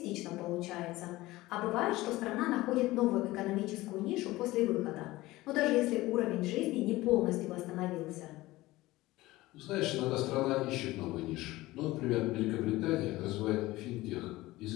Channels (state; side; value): quieter; right; 18.5 dB